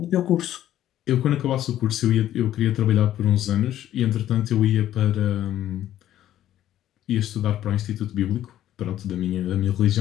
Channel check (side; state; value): right; quieter; 12.3 dB